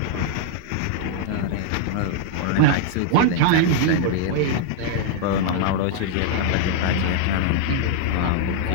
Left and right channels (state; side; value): different; both; correlation -0.01